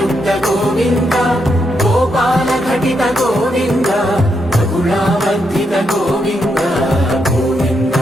గోవింద గోపాల ఘటిత గోవింద బహుళావర్ధిత గోవింద గోవింద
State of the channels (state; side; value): normal; both; correlation 0.81